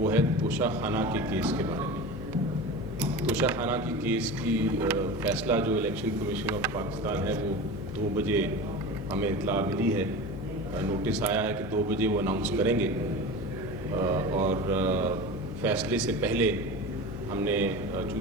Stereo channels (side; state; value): left; noise; hum, 9 dB below the sound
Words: ہے توشہ خانہ کے کیس کے بارے میں۔ توشہ خانہ کی کیس کی فیصلہ جو الیکشن کمیشن آف پاکستان ہے وہ 2 بجے ہمیں اطلاع ملی ہے، نوٹس آیا ہے کہ 2 بجے وہ اناؤنس کریں گے، اور فیصلے سے پہلے ہم نے